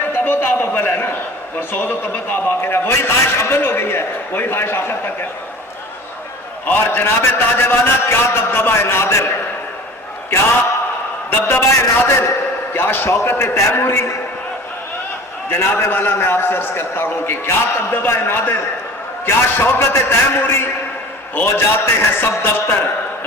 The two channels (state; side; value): normal; both; correlation 0.41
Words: و تاب اول ہے نا، اور سوز و تب و تاب آخر ہے. وہی خواہش اول ہو گئی ہے، وہی خواہش آخر تک ہے. اور جناب تاج والا کیا دبدبہ نادر، کیا دبدبہ نادر، کیا شوکت تیموری. جناب والا میں آپ سے عرض کرتا ہوں کہ کیا دبدبہ نادر، کیا شوکت تیموری. ہو جاتے ہیں سب دفتر